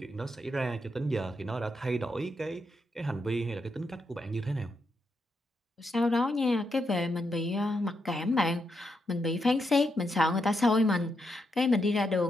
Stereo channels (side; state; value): both; normal; correlation 0.81